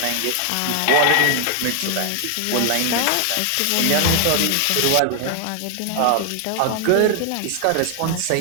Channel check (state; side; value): different; both; correlation 0.00